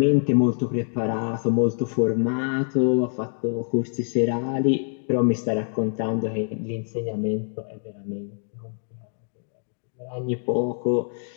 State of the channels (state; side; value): silent; right; 62 dB below the other